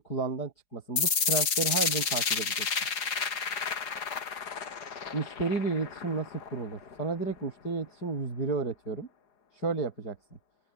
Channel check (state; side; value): late; right; 4.9 ms